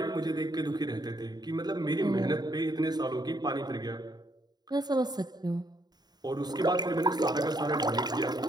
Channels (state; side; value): late; left; 0.20 ms